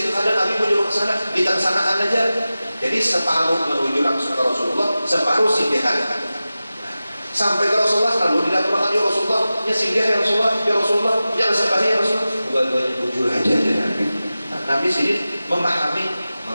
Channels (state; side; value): inverted; both; correlation -0.95